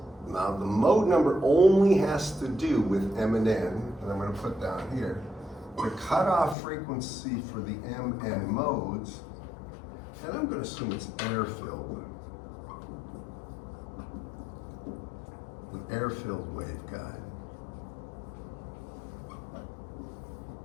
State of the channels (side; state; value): right; drops out; at 6.6 s